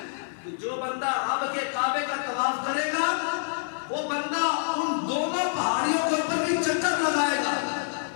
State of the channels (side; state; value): right; silent; digital silence